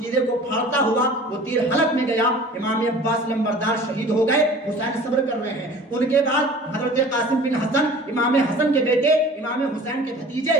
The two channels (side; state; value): both; normal; correlation 0.44